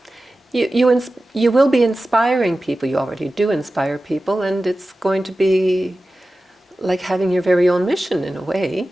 you will be inspiring people. You already do inspire people, and it's going to be like having your very own mission in a way,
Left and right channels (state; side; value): normal; both; correlation 0.95